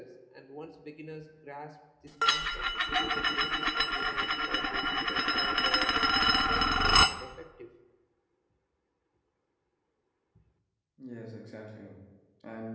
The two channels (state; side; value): identical; both; correlation 1.00